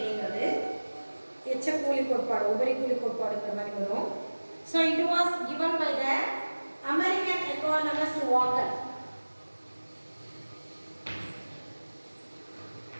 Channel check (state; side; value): inverted; both; correlation -1.00